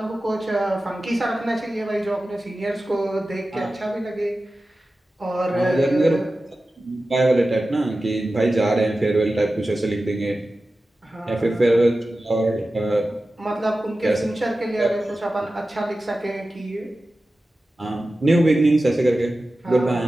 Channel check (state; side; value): normal; both; correlation 0.94